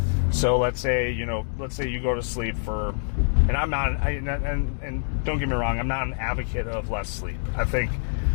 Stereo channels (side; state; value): right; silent; digital silence